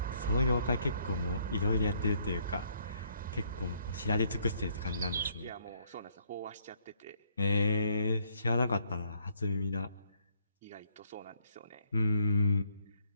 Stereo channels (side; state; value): both; inverted; correlation -0.68